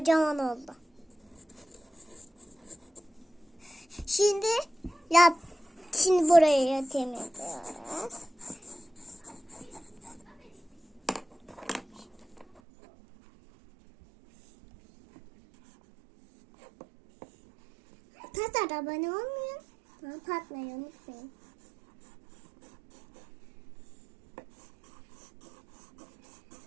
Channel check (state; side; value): drops out; left; at 12.6 s